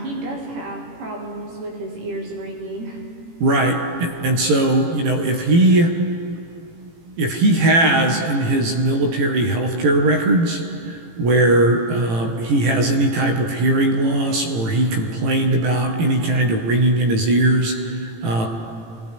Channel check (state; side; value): late; left; 18 ms